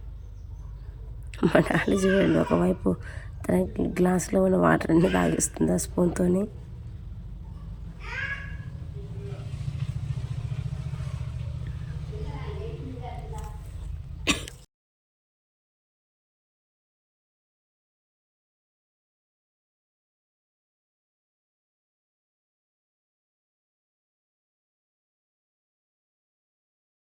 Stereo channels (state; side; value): identical; both; correlation 1.00